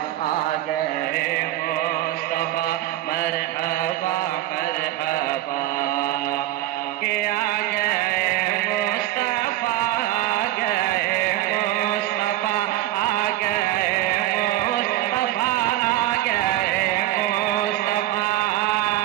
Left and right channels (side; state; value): left; quieter; 14.6 dB